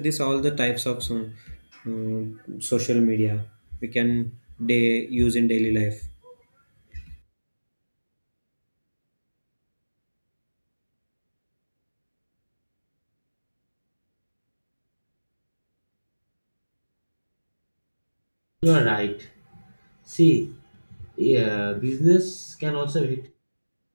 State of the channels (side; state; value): both; inverted; correlation -1.00